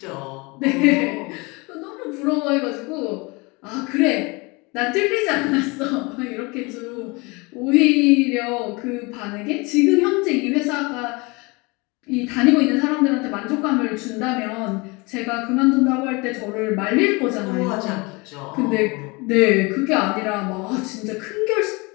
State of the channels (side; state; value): right; quieter; 26.6 dB